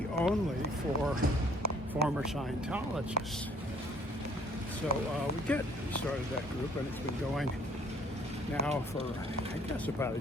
only for former Scientologists. So we started that group, and it's been going now for, I guess, about a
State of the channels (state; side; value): normal; both; correlation 0.59